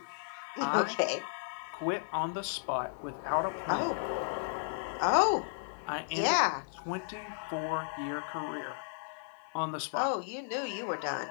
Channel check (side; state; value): right; silent; 55 dB below the other